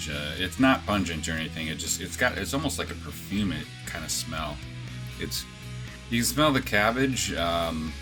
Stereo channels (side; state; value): both; identical; correlation 1.00